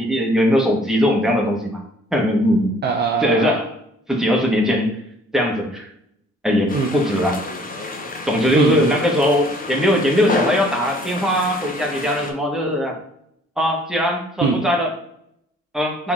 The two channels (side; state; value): both; normal; correlation 0.57